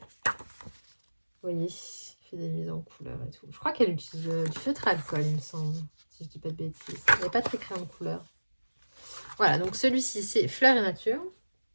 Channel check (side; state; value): both; inverted; correlation -1.00